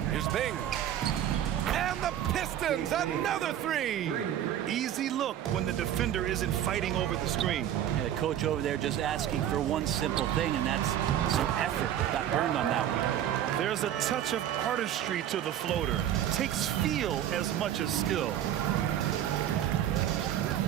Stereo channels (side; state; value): left; quieter; 11.0 dB